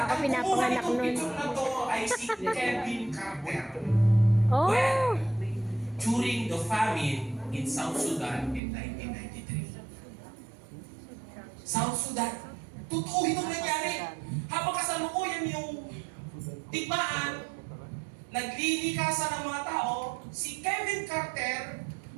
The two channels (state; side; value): drops out; left; at 8.6 s